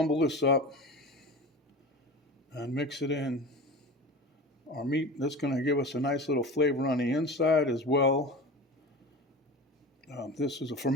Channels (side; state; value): both; normal; correlation 0.33